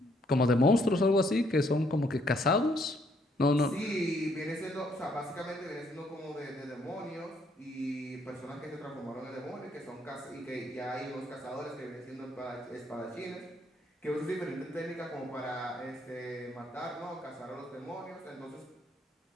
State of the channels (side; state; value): both; normal; correlation 0.69